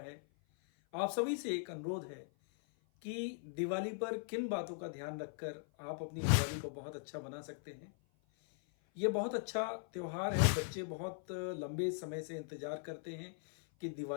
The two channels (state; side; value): silent; right; 51 dB below the other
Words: आप सभी से एक अनुरोध है कि दिवाली पर किन बातों का ध्यान रखकर आप अपनी दिवाली को बहुत अच्छा बना सकते हैं। ये बहुत अच्छा त्योहार है। बच्चे बहुत लंबे समय से इंतज़ार करते हैं कि